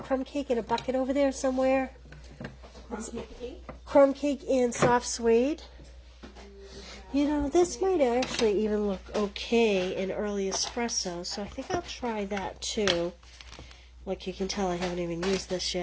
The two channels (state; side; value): identical; both; correlation 1.00